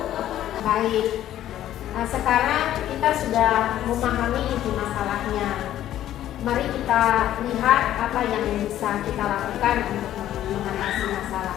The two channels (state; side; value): quieter; right; 12.3 dB